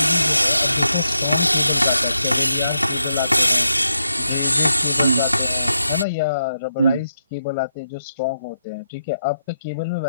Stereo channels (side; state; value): both; inverted; correlation -0.82